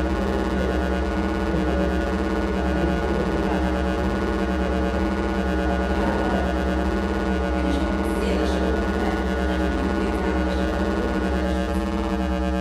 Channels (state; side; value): identical; both; correlation 1.00